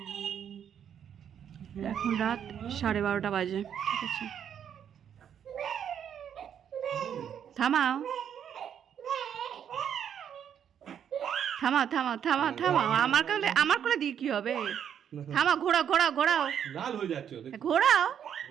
এখন রাত 12:30 বাজে। ঠিক আছে, থামাও থামাও থামাও থামাও থামাও। আমার কোলে দিয়ে কি হবে? থামাও, ঘোরাও ঘোরাও ঘোরাও, লাল হয়ে যাচ্ছে ঘোরাও।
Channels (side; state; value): left; quieter; 8.8 dB